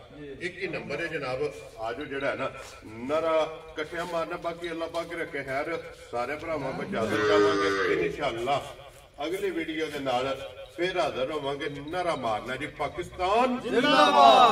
ਇੱਕ ਹੀ ਨੰਬਰ ਹੈ ਜਨਾਬ ਆਜੋ ਜਿਹੜਾ ਹੈ ਨਾ ਨਰਾ ਇਕੱਠਿਆਂ ਮਾਰਨਾ ਬਾਕੀ ਅੱਲਾਹ ਪਾਕ ਰੱਖੇ ਖੈਰ ਸਾਰੇ ਭਰਾਵਾਂ ਨੂੰ ਇਜਾਜ਼ਤ ਚਾਹਾਂਗੇ ਇਨਸ਼ਾਅੱਲਾ ਅਗਲੀ ਵੀਡੀਓ ਦੇ ਨਾਲ ਫਿਰ ਹਾਜ਼ਰ ਹੋਵਾਂਗੇ ਨਰਾ ਮਾਰਨਾ ਜੀ ਪਾਕਿਸਤਾਨ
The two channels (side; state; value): both; identical; correlation 1.00